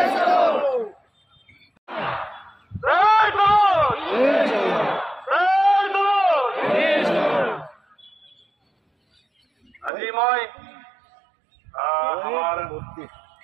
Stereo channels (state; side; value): drops out; left; at 9.9 s